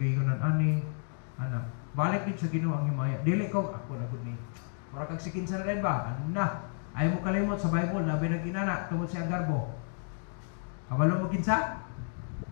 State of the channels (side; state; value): right; silent; 57 dB below the other